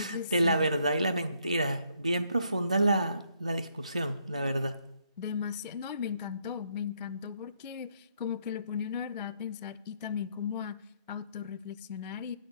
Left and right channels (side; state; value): both; inverted; correlation -0.71